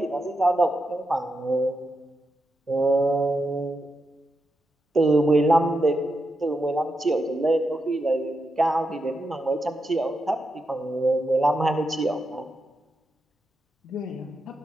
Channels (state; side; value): normal; both; correlation 0.86